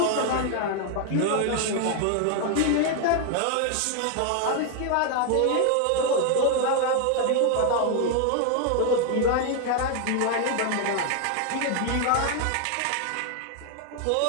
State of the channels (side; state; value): both; different; correlation 0.00